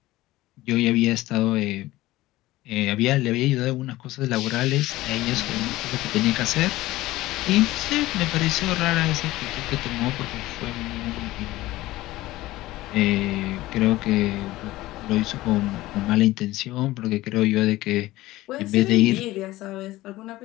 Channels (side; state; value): right; quieter; 17.4 dB